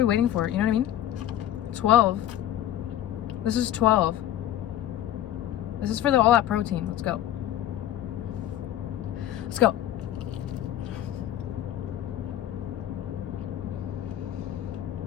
waiting for? You know what I mean? 12. This is 12. This is for all that protein. Let's go. Let's go.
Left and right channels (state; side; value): quieter; right; 12.1 dB